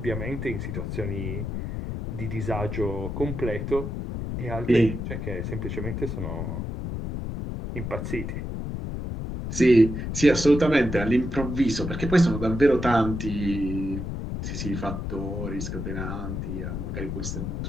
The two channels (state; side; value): noise; left; rumble, 4 dB below the sound